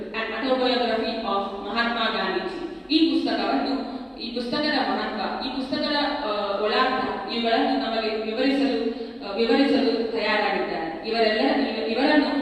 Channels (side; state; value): both; identical; correlation 1.00